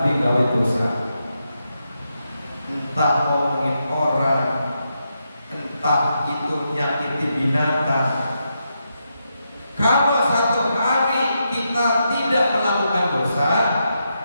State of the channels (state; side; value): inverted; both; correlation -0.84